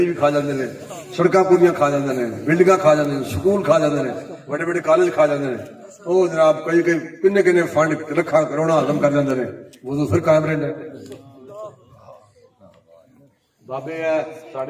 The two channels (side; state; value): both; identical; correlation 1.00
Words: بھی کھا جاندے نے سڑکاں پوریاں کھا جاندے نے بلڈنگاں کھا جاندے نے سکول کھا جاندے نے بڑے بڑے کالج کھا جاندے نے وہ جناب کئی کنے کنے فنڈ رکھا کروڑا ہضم کر جاندے نے وضو پھر قائم رہندا ہے بابے ہے